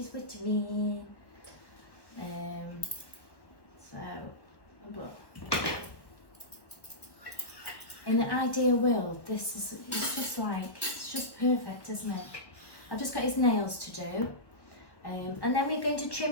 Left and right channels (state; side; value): late; right; 1.3 ms